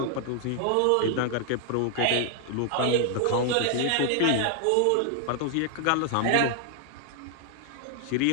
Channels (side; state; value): both; different; correlation 0.00